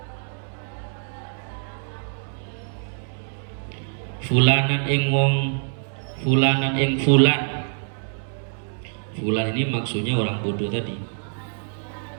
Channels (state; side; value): silent; left; digital silence